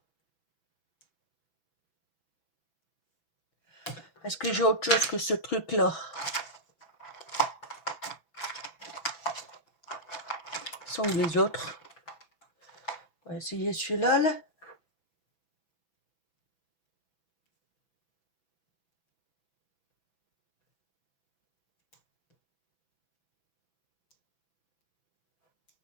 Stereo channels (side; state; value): right; late; 6.0 ms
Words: Est-ce que j'ai autre chose que ce truc-là? Sont où les autres? On va essayer celui-là, là.